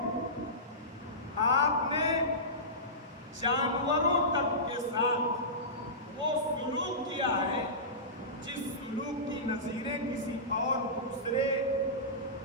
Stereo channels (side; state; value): both; normal; correlation -0.19